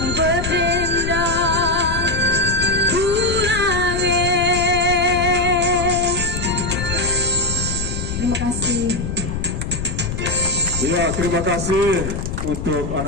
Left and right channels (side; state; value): left; noise; rumble, 5 dB below the sound